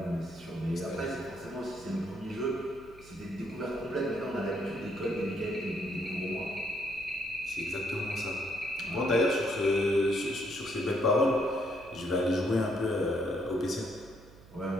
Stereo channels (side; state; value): right; noise; hum, 21 dB below the sound